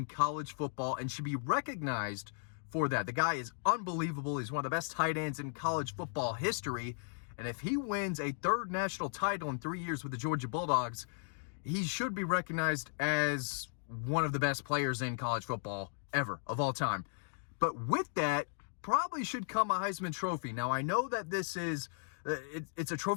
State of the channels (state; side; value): silent; right; digital silence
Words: college football and should be recognized for that. The guy is unbelievable. He's one of the best tight ends in college football history. And if he wins a 3rd national title in 3 years with the Georgia Bulldogs, he should be recognized as one of the best players in college football ever, of all time. But with that, probably should come a Heisman Trophy. Now, I know that this is, it's a